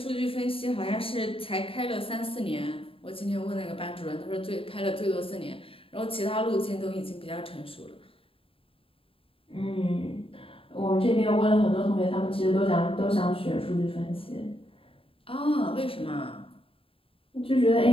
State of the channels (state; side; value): late; right; 0.27 ms